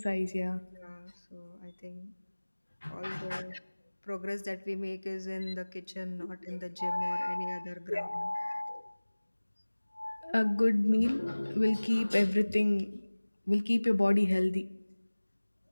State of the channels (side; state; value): both; inverted; correlation -1.00